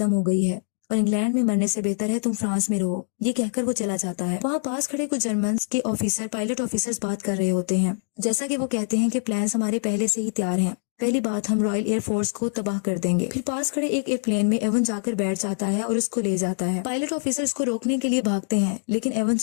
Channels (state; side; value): silent; right; digital silence